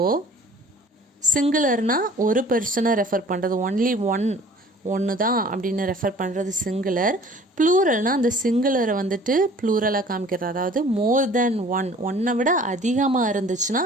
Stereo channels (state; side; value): normal; both; correlation 0.49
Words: சிங்குலர்னால் ஒரு பர்சனை ரெஃபர் பண்ணுறது, ஒன்லி ஒன்று தான் அப்படின்னு ரெஃபர் பண்ணுறது சிங்குலர். ப்ளூரல்னால் அந்த சிங்குலரை வந்துட்டு ப்ளூரலாக காமிக்கிறது, அதாவது மோர் தென் ஒன், ஒன்றை விட அதிகமாக இருந்துச்சுன்னா